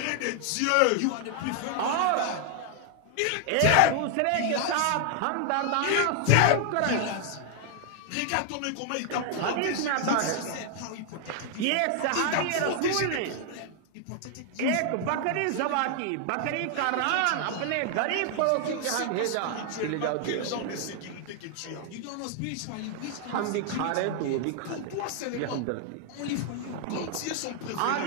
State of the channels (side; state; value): both; different; correlation 0.00